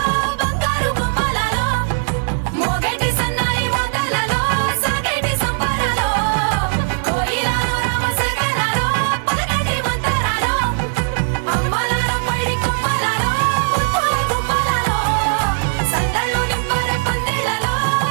బంగారు గుమ్మలలో మోగేటి సన్నాయి మోతలలో సాగేటి సంబరాలో కోయిలలో రామశకలలో పలకటి మంతరాలో అమ్మలాలో పడి కొమ్మలలో ముద్దుల గుమ్మలలో సందళ్ళు నింపరే పందిళ్ళలో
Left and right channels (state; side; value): silent; left; digital silence